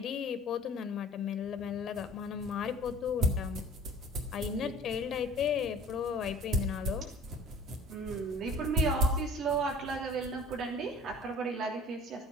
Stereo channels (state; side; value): normal; both; correlation 0.46